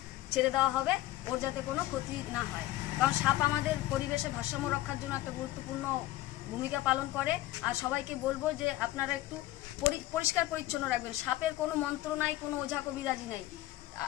ছেড়ে দেওয়া হবে, ওর যাতে কোনো ক্ষতি না হয়। কারণ সাপ আমাদের পরিবেশে ভারসাম্য রক্ষার জন্য একটা গুরুত্বপূর্ণ ভূমিকা পালন করে। আর সবাইকে বলবো যে আপনারা একটু পরিষ্কার পরিচ্ছন্ন রাখবেন। সাপের কোনো মন্ত্র নাই, কোনো ওঝা কবিরাজি নাই।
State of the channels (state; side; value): quieter; right; 16.2 dB